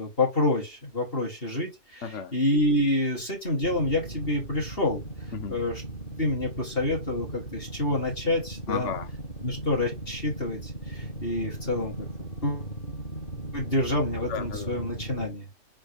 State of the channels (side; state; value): right; late; 2.8 ms